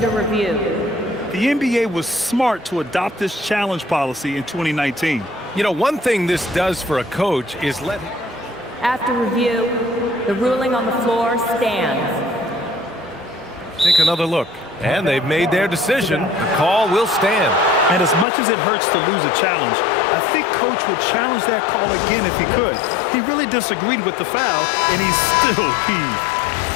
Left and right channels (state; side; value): drops out; right; at 18.2 s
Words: review. The NBA was smart to adopt this challenge policy in 2019. You know, one thing this does for a coach is let him... After review, the ruling on the floor stands. Take another look. And they've made their decision. The call will stand. And as much as it hurts to lose a challenge, I think Coach would challenge that call again if he could. He really disagreed with the foul, and he's still peeved.